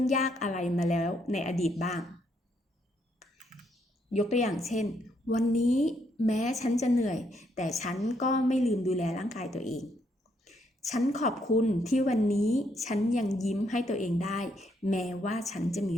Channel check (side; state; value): both; normal; correlation 0.74